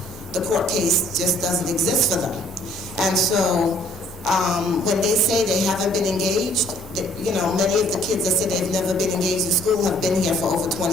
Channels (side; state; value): both; normal; correlation 0.60